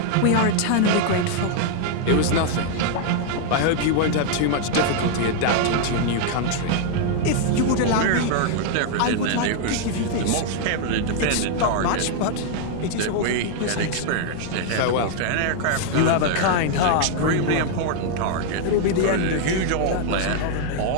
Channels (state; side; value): different; both; correlation 0.00